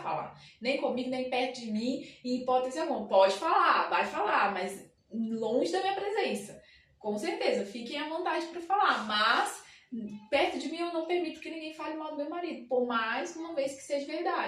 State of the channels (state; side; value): identical; both; correlation 1.00